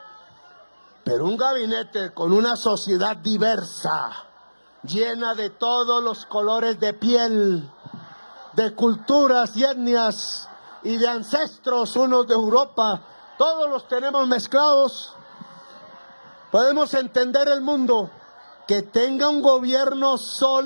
Pero un gabinete con una sociedad diversa, llena de todos los colores de piel, de culturas y etnias y de ancestros, unos de Europa, todos los tenemos mezclados. Podemos entender el mundo. Que tenga un gobierno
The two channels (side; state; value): both; inverted; correlation -1.00